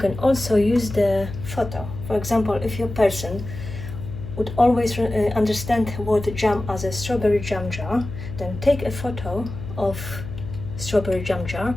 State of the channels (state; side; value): noise; left; hum, 10 dB below the sound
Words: also use the photo. For example, if your person would always understand the word jam as a strawberry jam jar, then take a photo of strawberry jam jar,